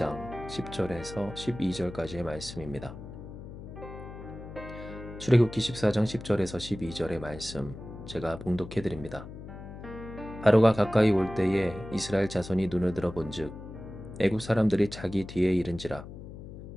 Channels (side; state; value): left; noise; hum, 12 dB below the sound